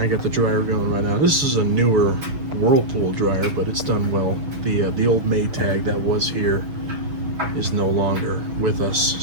I got the dryer going right now. This is a newer Whirlpool dryer, but it's done well. The old Maytag that was here is no longer with us,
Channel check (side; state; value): left; late; 6.5 ms